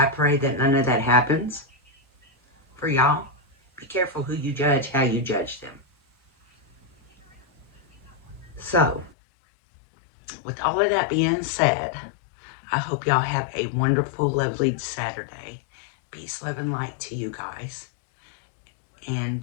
pray that none of that happens. for y'all. Be careful who you judge, how you judge them. So, with all of that being said, I hope y'all have a wonderful, lovely Saturday. Peace, love, and light to you guys. And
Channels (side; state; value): right; drops out; at 9.2 s